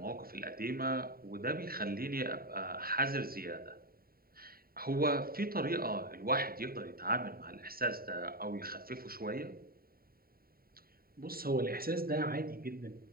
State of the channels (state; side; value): late; left; 0.43 ms